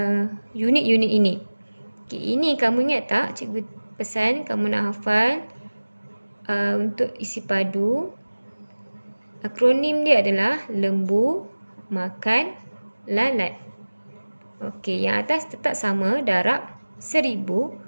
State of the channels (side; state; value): both; inverted; correlation -1.00